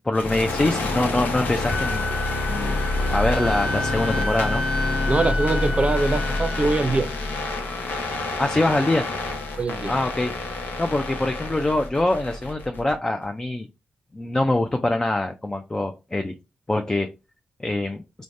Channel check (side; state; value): both; normal; correlation 0.87